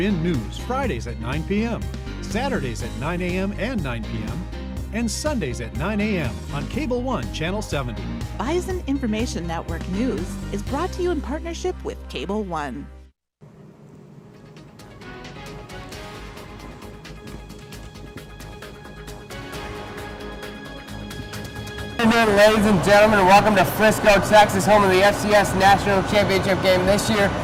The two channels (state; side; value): identical; both; correlation 1.00